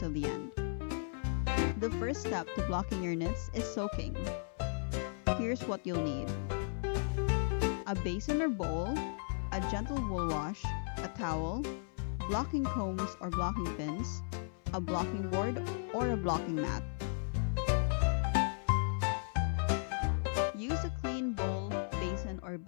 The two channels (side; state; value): right; silent; 54 dB below the other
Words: the end. The first step to blocking your knits is soaking. Here's what you'll need: a basin or bowl, a gentle wool wash, a towel, blocking combs or blocking pins, a blocking board or a blocking mat. Use a clean bowl, basin, or